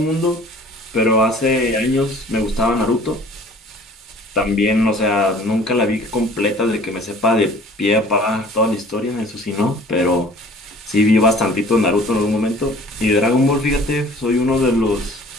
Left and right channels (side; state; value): both; normal; correlation 0.50